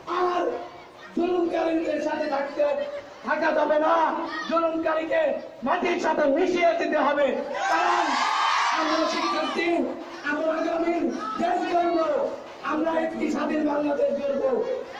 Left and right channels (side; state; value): both; identical; correlation 1.00